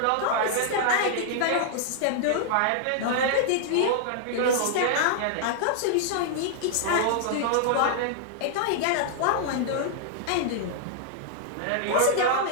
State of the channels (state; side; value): different; both; correlation -0.01